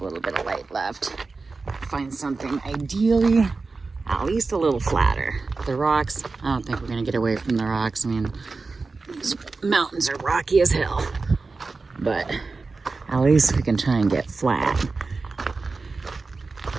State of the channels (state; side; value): quieter; left; 4.0 dB